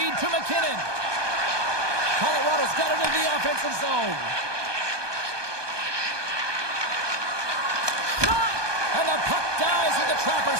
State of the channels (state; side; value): late; left; 1.2 ms